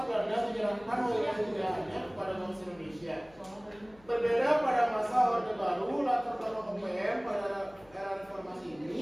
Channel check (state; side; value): noise; left; hum, 27 dB below the sound